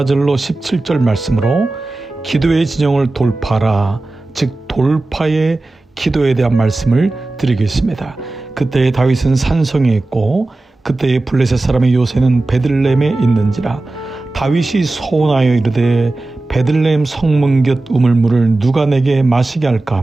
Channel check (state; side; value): quieter; left; 3.0 dB